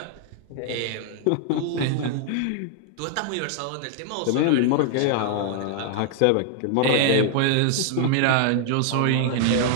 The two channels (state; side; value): different; both; correlation 0.00